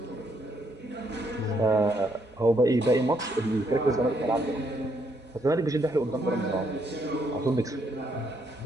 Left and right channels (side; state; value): both; normal; correlation 0.73